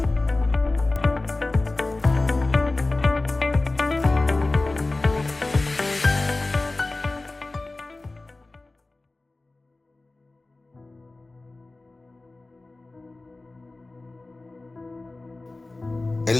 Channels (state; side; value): quieter; right; 3.1 dB